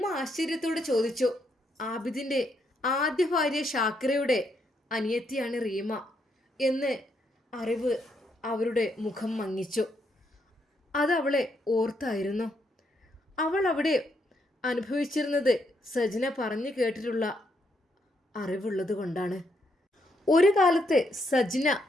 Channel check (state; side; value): normal; both; correlation 0.76